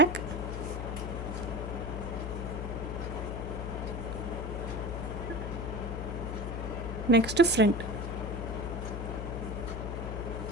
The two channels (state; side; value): noise; left; hum, 4 dB below the sound